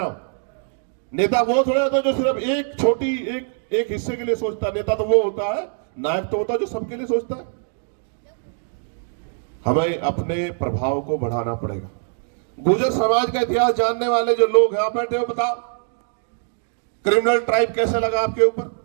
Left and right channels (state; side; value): silent; left; digital silence